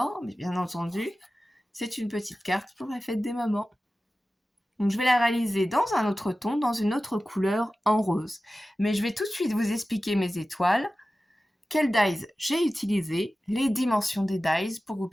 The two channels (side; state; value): both; normal; correlation 0.95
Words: mais bien entendu, c'est une petite carte pour la fête des mamans. Donc je vais la réaliser dans un autre ton, dans une autre couleur en rose. Mais je vais tout de suite vous expliquer mes étoiles, quels dies j'ai utilisé, les dimensions des dies pour que vous